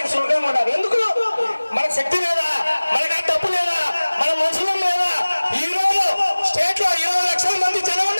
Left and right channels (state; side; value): inverted; both; correlation -1.00